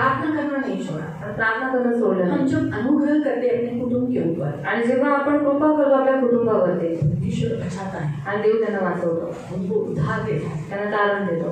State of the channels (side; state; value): both; identical; correlation 1.00